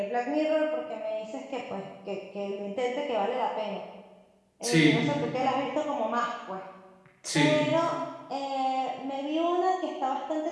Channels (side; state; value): both; identical; correlation 1.00